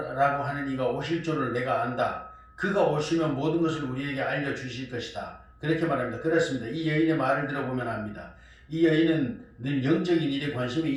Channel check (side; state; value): both; identical; correlation 1.00